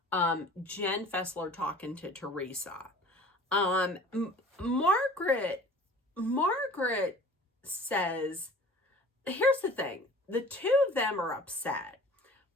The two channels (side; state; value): both; normal; correlation 0.46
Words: Jen Fessler talking to Teresa. Margaret says, here's the thing, the two of them are upset,